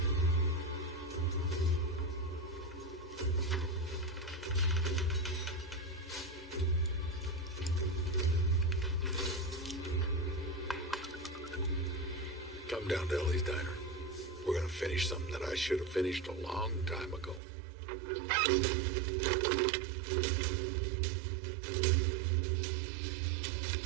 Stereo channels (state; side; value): drops out; left; at 17.4 s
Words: Come down to Ellie's Diner. We're gonna finish something that I should have finished a long time ago.